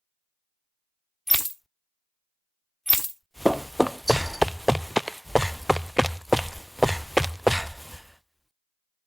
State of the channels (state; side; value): identical; both; correlation 1.00